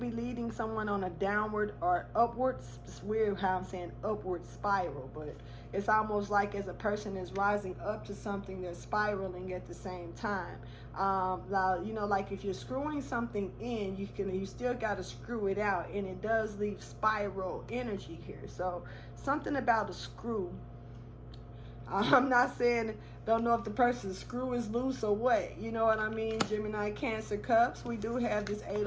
leading someone on a downward or upwards. It's weird how I'm saying upward spiral, but it's almost like as a person is rising up to something, they're spiraling at the same time. Now, you know, like if you're screwing something in, you still got to screw it out, and it does leave spiral energy here. So something about a screw. I'm not saying, don't know if the person's screw is loose or what. You know what I mean? Gemini, Cancer, Cups. We do have this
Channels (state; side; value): identical; both; correlation 1.00